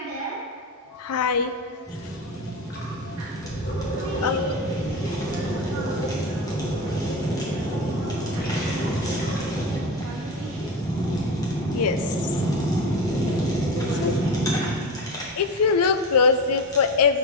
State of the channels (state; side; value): normal; both; correlation 0.23